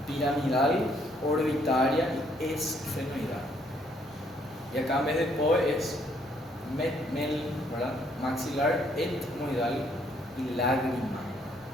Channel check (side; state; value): both; normal; correlation 0.68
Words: Piramidal, orbitaria y esfenoidal. Y acá en vez de POE es ¿verdad?, maxilar, etmoidal y lágrima.